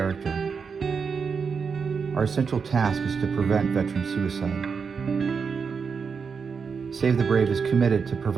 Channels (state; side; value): quieter; left; 5.7 dB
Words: Our essential task is to prevent veteran suicide. Save the Brave is committed to